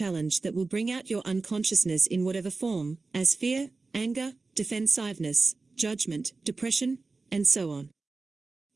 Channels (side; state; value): left; quieter; 3.8 dB